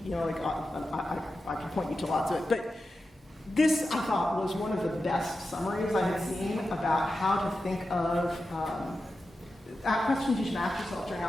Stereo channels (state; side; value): normal; both; correlation 0.91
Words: I can point you to lots of it, but This, I thought, was one of the best summaries I had seen about how to think of questions you should ask yourself during